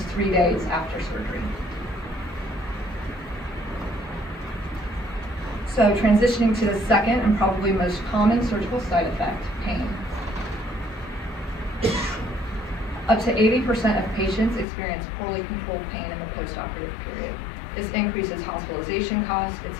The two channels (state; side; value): drops out; right; at 14.7 s